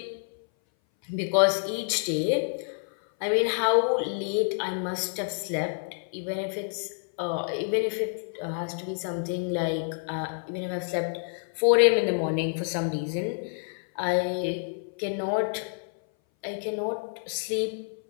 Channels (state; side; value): silent; right; 58 dB below the other